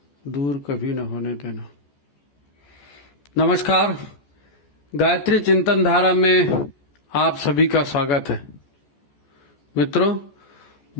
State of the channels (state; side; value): late; right; 14 ms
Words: दूर कभी न होने देना। नमस्कार, गायत्री चिंतन धारा में आप सभी का स्वागत है। मित्रों,